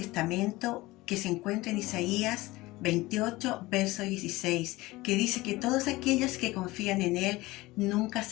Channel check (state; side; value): quieter; right; 19.9 dB